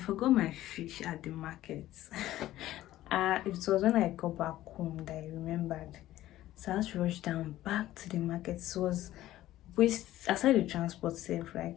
my fish at the market. It was when I got back home that I remembered. So I had to rush down back to the market. It was waste aside the transport safe,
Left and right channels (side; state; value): right; quieter; 14.6 dB